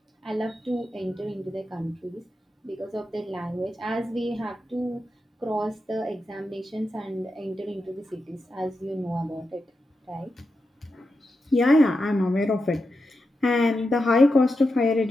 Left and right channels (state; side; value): normal; both; correlation 0.88